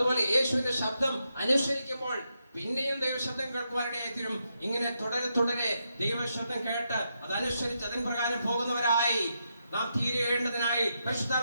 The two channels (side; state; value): both; inverted; correlation -0.83